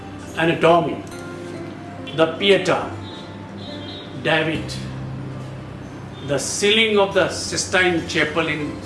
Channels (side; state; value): both; identical; correlation 1.00